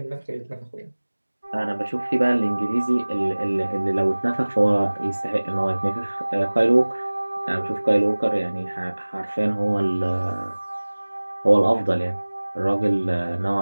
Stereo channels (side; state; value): both; inverted; correlation -1.00